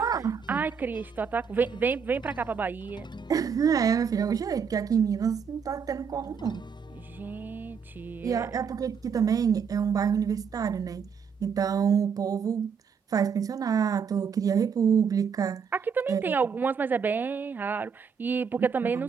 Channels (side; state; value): left; quieter; 6.5 dB